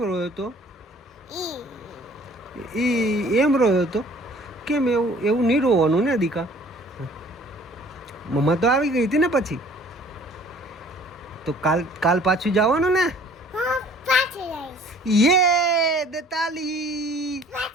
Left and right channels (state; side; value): normal; both; correlation 0.53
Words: રોયો હતો એમ રોયો હતો કેમ એવું નહીં રોવાનું ને દીકા મમ્મા તો આવી ગઈ હતી ને પછી તો કાલ પાછું જવાનું ને હા પાછું લઈશ યે દે તાલી